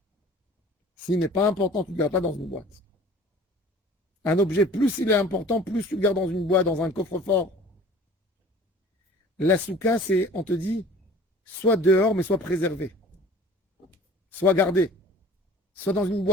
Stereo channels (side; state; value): both; normal; correlation 0.46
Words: S'il n'est pas important, tu ne le gardes pas dans une boîte. Un objet, plus il est important, plus tu le gardes dans une boîte, dans un coffre-fort. La souka, c'est, on te dit, soit dehors, mais soit préservé. Soit gardé. Soit dans une